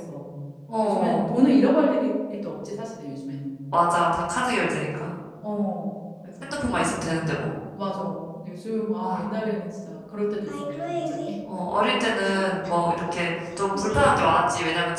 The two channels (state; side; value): identical; both; correlation 1.00